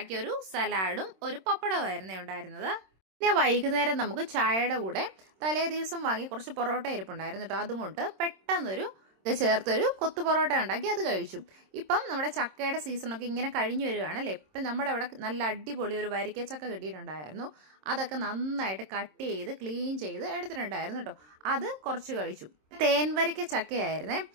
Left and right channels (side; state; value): left; late; 26 ms